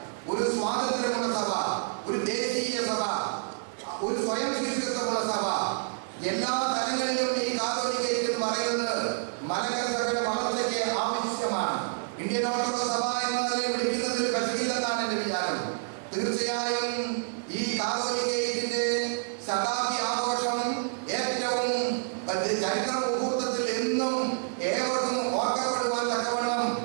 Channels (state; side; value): silent; left; digital silence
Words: ഒരു സ്വാതന്ത്ര്യമുള്ള സഭ, ഒരു ദേശീയ സഭ, ഒരു സ്വയം ശിഷ്യത്വമുള്ള സഭ, എല്ലാ തലങ്ങളിലും ഈ കാതോലിക്ക എന്ന് പറയുന്നത് മലങ്കര സഭയുടെ വളർച്ചയ്ക്ക് ആവശ്യമാണ്. ഇന്ത്യൻ ഓർത്തഡോക്സ് സഭ എന്നതിനെ വിളിക്കുന്നതിൽ കശകില്ലെന്നാണ് എന്റെ വിചാരം. തീർച്ചയായും ഈ കാതോലിക്കയുടെ ശതാബ്ദി ആഘോഷം ഏറ്റവും ചരിത്ര മുഹൂർത്തത്തിൽ എന്നും ഏവർക്കും ഓർക്കപ്പെടുവാൻ തക്കവണ്ണം